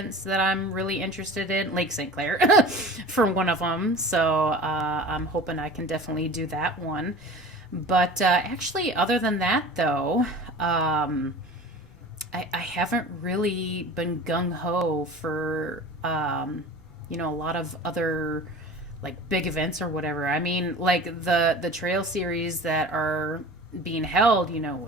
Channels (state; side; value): normal; both; correlation 0.38